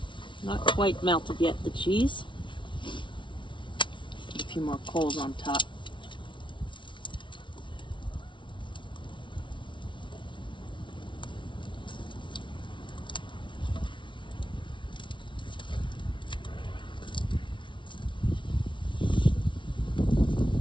quite melted yet, the cheese. Put a few more coals on top.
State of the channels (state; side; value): late; right; 0.24 ms